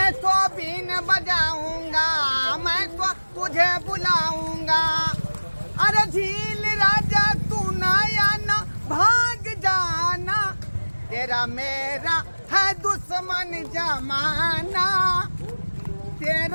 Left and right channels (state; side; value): inverted; both; correlation -1.00